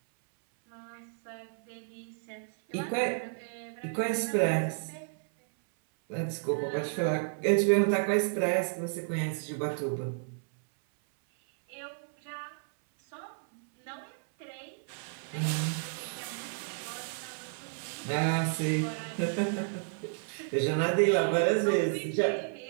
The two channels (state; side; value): silent; left; 57 dB below the other